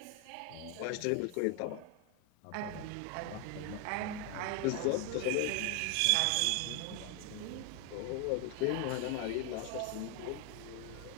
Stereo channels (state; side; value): different; both; correlation 0.01